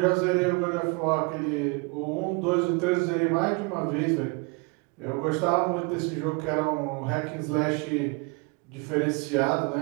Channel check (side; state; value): left; quieter; 31.0 dB